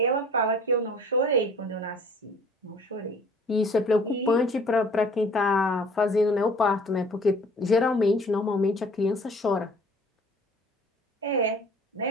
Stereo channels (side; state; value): both; normal; correlation 0.50